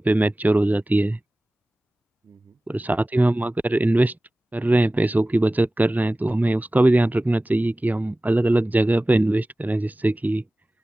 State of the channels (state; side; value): normal; both; correlation 0.97